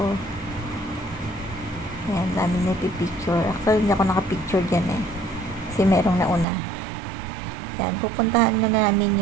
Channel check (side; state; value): left; drops out; at 6.5 s